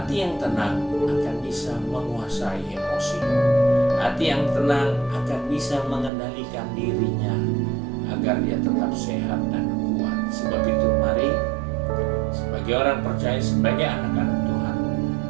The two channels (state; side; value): drops out; left; at 6.1 s